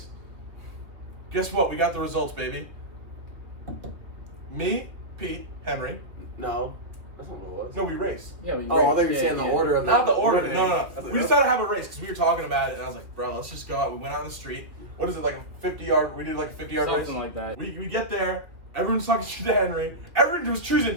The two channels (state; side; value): late; left; 2.1 ms